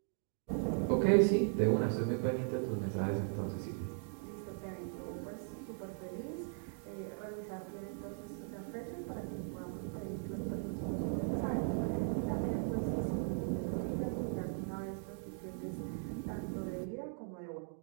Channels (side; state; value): left; silent; 52 dB below the other